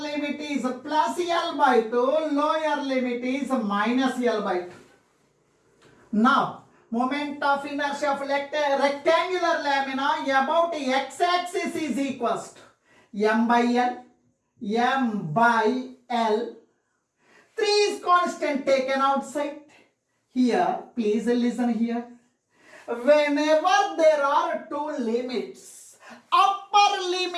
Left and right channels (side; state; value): both; identical; correlation 1.00